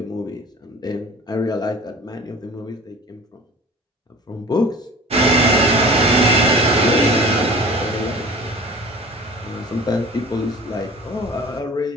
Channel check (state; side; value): normal; both; correlation 0.41